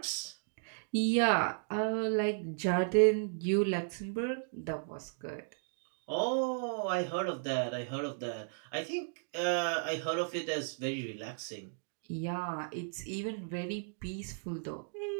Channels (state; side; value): silent; left; digital silence